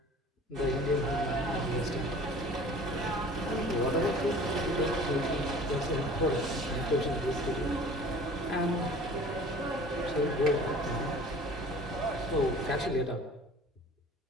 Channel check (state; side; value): normal; both; correlation 0.46